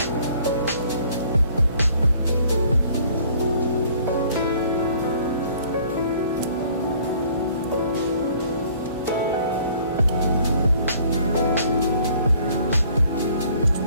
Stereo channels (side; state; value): both; inverted; correlation -0.57